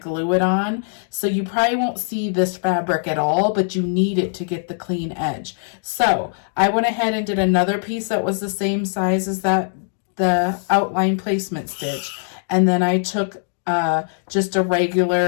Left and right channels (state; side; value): silent; right; digital silence